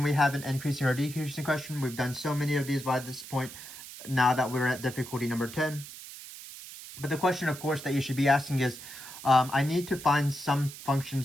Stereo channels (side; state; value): right; noise; hiss, 13 dB below the sound